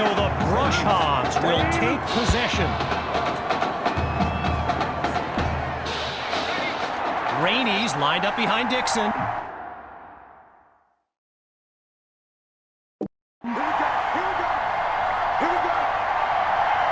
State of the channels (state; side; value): identical; both; correlation 1.00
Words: the Brush Hogs will take possession. Rainey's lined up behind Dixon.